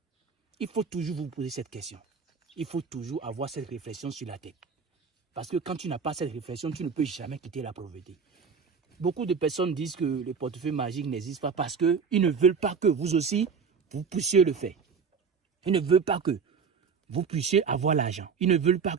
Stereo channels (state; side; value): quieter; left; 5.9 dB